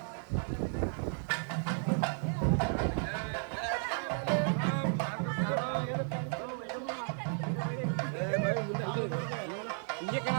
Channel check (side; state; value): left; silent; 55 dB below the other